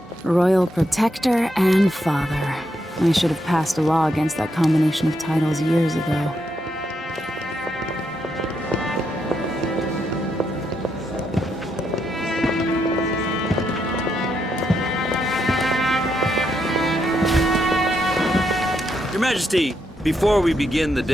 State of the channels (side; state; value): both; normal; correlation 0.80